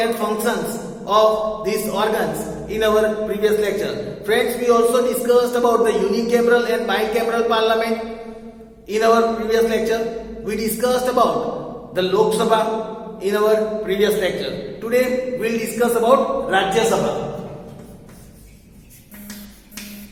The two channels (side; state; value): both; identical; correlation 1.00